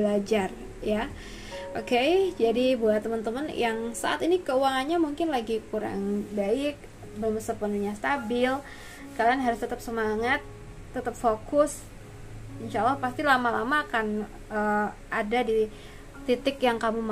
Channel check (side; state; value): both; identical; correlation 1.00